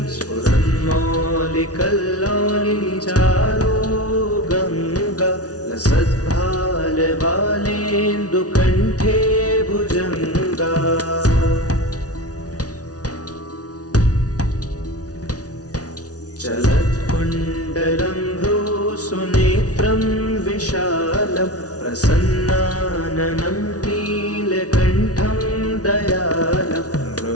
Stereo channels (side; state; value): right; late; 0.68 ms